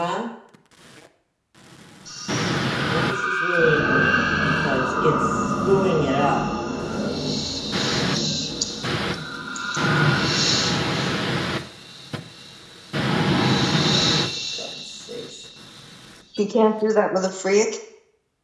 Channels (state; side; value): identical; both; correlation 1.00